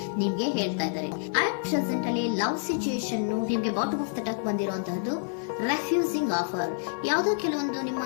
ನಿಮ್ಗೆ ಹೇಳ್ತಾ ಇದ್ದಾರೆ. ಅಟ್ ಪ್ರೆಸೆಂಟ್ ಅಲ್ಲಿ ಲವ್ ಸಿಚುಯೇಷನ್ ನಿಮ್ಗೆ ಬಾಟಮ್ ಆಫ್ ದ ಟಕ್ ಬಂದಿರುವಂತಹದ್ದು ರೆಫ್ಯೂಸಿಂಗ್ ಆಫರ್. ಯಾವುದೋ ಕೆಲವೊಂದು ನಿಮ್ಮ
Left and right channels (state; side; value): silent; right; digital silence